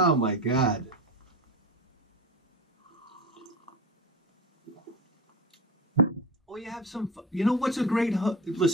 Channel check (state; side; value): normal; both; correlation 0.26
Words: my God. Or you have some, you know what's a great,